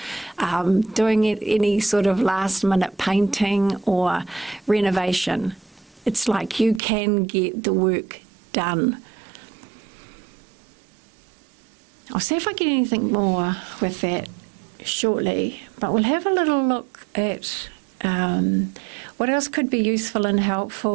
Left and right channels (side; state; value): left; drops out; at 6.8 s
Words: doing any sort of last-minute painting or renovation. It's like you can get the work done. I'll see if I get anything more with that shortly, but we'll have a little look at what else could be useful and